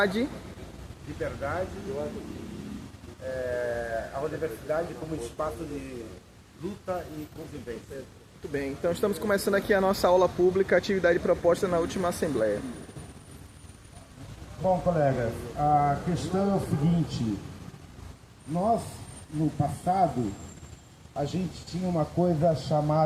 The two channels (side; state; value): both; identical; correlation 1.00